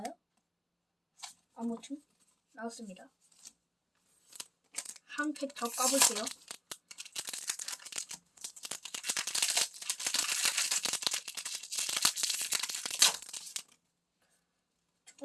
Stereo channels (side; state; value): both; identical; correlation 1.00